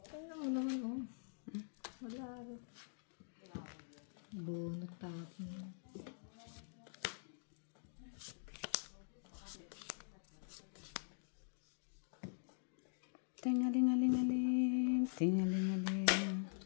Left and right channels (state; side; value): silent; right; digital silence